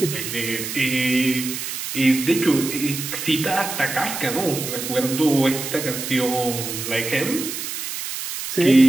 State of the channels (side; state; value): right; noise; hiss, 6 dB below the sound